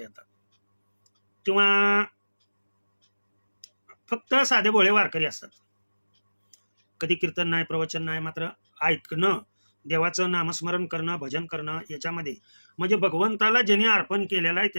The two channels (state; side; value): inverted; both; correlation -1.00